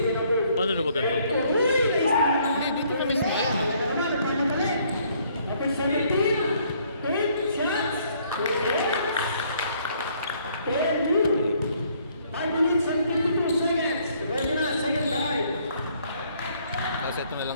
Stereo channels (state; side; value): inverted; both; correlation -0.65